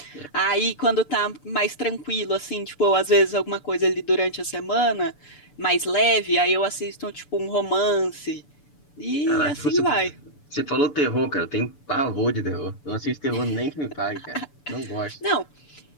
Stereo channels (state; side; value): late; right; 6.9 ms